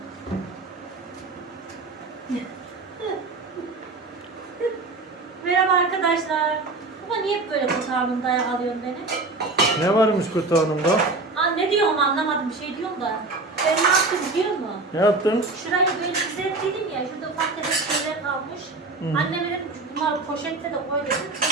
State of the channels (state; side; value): quieter; left; 3.4 dB